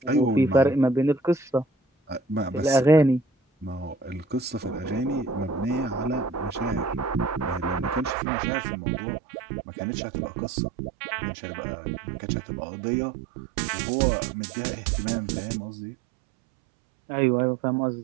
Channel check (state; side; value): drops out; left; at 8.2 s